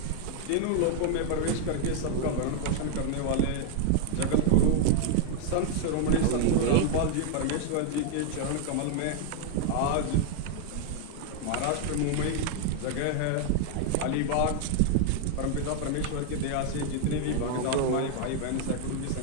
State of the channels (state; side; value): different; both; correlation -0.01